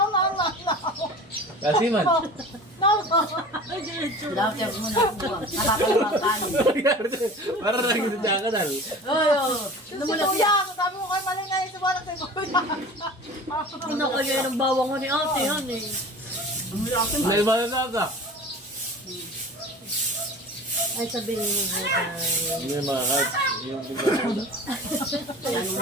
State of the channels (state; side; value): normal; both; correlation 0.39